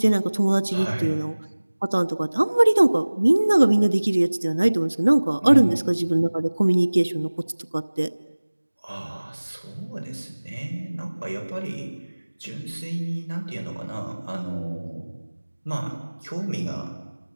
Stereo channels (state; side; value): inverted; both; correlation -1.00